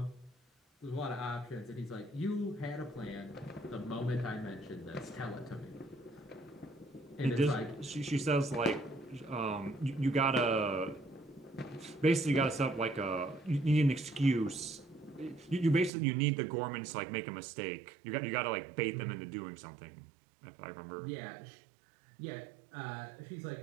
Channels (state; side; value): drops out; left; at 15.9 s